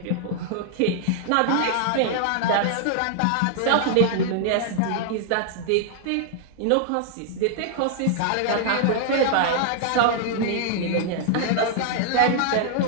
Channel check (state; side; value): different; both; correlation 0.00